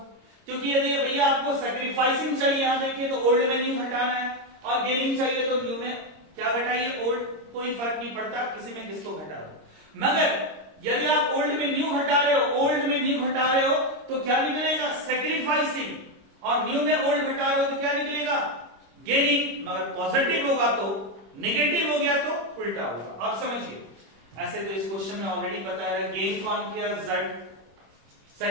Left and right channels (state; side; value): late; left; 26 ms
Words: क्योंकि यदि भैया आपको सैक्रिफाइसिंग चाहिए, यहां देखिए तो ओल्ड में न्यू घटाना है, और गेनिंग चाहिए तो न्यू में क्या घटाइए? ओल्ड। कोई फर्क नहीं पड़ता किसी में किसको घटा दो। मगर यदि आप ओल्ड में न्यू घटा रहे हो, तो क्या निकलेगा? सैक्रिफाइसिंग। और न्यू में ओल्ड घटा रहे हो तो क्या निकलेगा? गेनिंग। मगर पॉजिटिव होगा तो, नेगेटिव हो गया तो उल्टा होगा। आप समझिए। ऐसे तो इस क्वेश्चन में ऑलरेडी पता है, गेन कौन किया? Z,